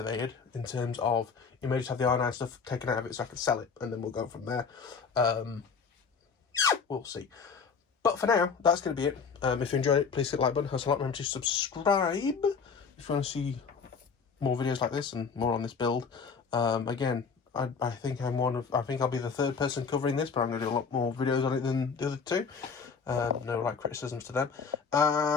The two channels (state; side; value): quieter; right; 5.6 dB